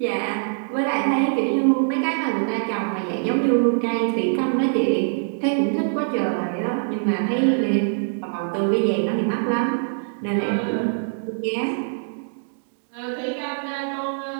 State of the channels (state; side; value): silent; left; digital silence